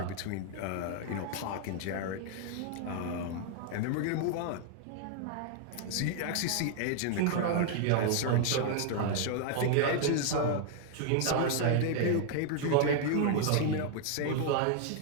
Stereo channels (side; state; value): both; different; correlation 0.00